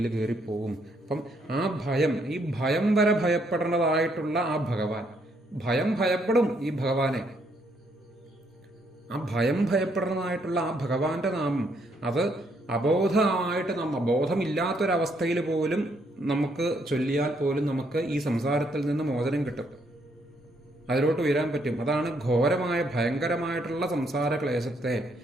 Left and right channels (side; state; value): both; normal; correlation 0.72